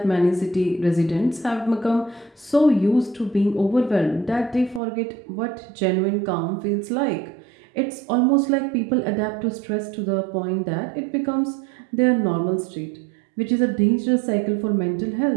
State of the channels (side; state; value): left; drops out; at 4.8 s